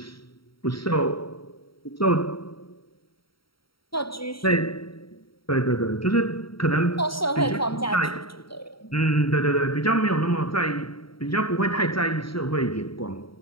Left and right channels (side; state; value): right; late; 0.74 ms